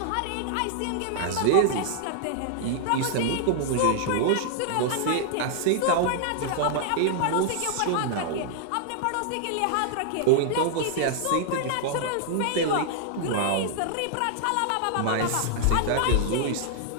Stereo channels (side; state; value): both; different; correlation -0.01